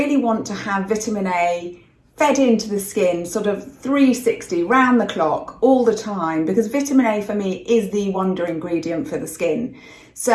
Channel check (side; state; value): both; identical; correlation 1.00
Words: want to have vitamin A fed into the skin sort of 360 round the clock all the time, because vitamin A for me is the wonder ingredient for the skin.